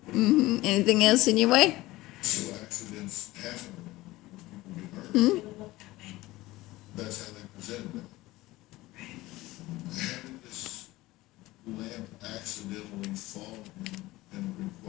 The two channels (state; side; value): quieter; right; 18.6 dB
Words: Anything else in your way? Accidents happen. That's how they presented it. Having this lamp accidentally fall and